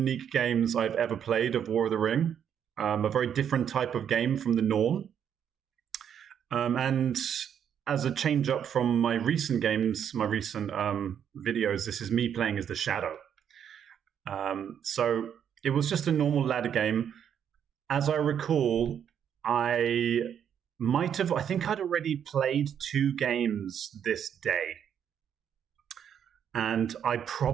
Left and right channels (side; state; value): left; quieter; 8.7 dB